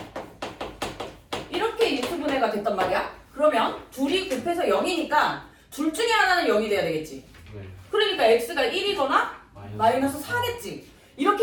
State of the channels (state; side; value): identical; both; correlation 1.00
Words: 이렇게 인수분해가 됐단 말이야. 그러면 둘이 곱해서 0이니까 둘 중에 하나는 0이 돼야 되겠지. 네. 그러니까 x가 1이거나 마이너스 4겠지.